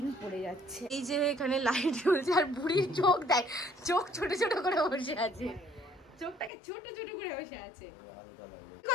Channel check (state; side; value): drops out; right; at 6.5 s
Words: পড়ে যাচ্ছে। এই যে এখানে লাইট জ্বলছে আর বুড়ির চোখ দেখ, চোখ ছোট ছোট করে বসে আছে, চোখটাকে ছোট ছোট করে বসে আছে। কি